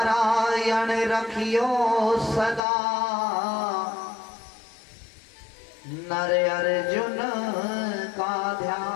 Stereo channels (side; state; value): right; drops out; at 2.6 s